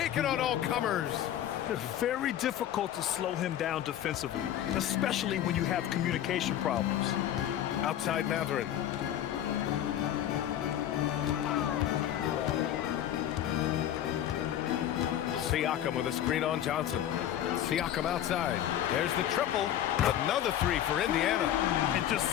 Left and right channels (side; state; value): right; quieter; 11.3 dB